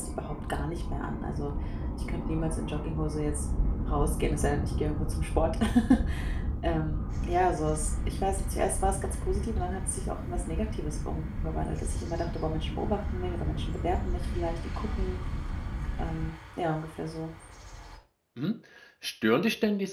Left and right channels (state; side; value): identical; both; correlation 1.00